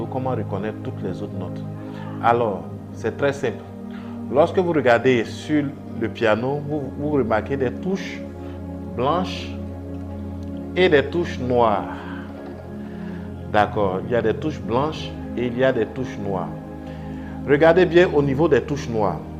comment reconnaître toutes les autres notes. Alors, c'est très simple. Lorsque vous regardez sur le piano, vous remarquez des touches blanches et des touches noires. D'accord, il y a des touches blanches et il y a des touches noires. Regardez bien au niveau des touches noires.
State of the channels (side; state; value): both; identical; correlation 1.00